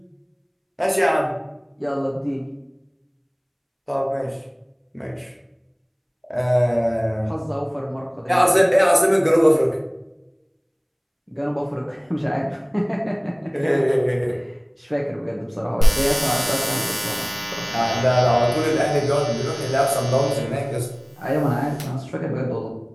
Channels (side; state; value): both; identical; correlation 1.00